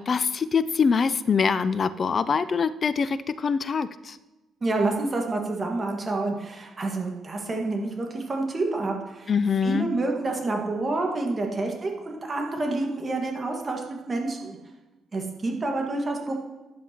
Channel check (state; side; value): normal; both; correlation 0.82